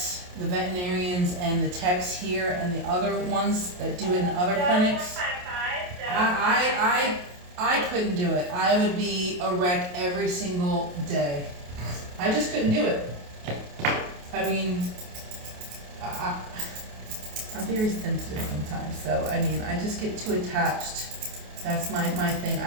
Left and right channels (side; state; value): left; late; 28 ms